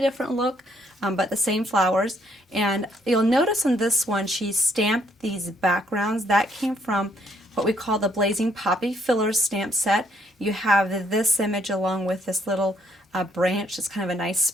different look, but the same flowers. And you'll notice on this one she stamped these backgrounds. That came from what we call the Blazing Poppy Fillers stamp set. You have this image along with this little branch. It's kind of a nice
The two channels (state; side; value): normal; both; correlation 0.68